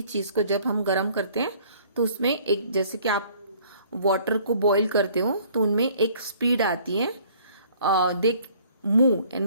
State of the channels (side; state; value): both; inverted; correlation -0.56